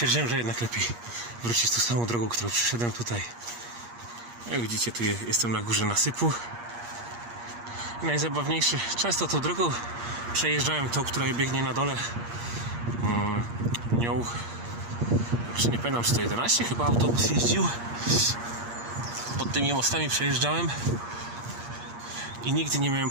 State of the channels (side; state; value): left; late; 8.5 ms